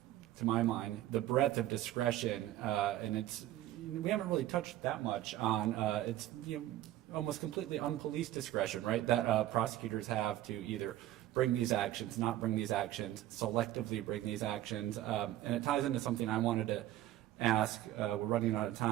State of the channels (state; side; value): quieter; left; 14.2 dB